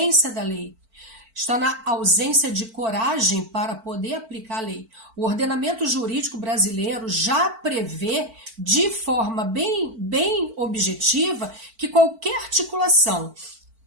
da lei. Está na ausência de coragem para poder aplicar a lei. O ordenamento jurídico brasileiro já prevê, de forma bem objetiva, que qualquer articulação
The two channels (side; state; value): left; late; 4.5 ms